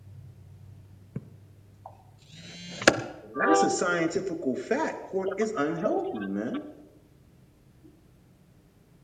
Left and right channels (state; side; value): identical; both; correlation 1.00